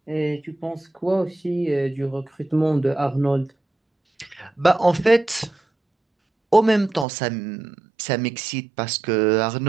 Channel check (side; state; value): left; drops out; at 7.1 s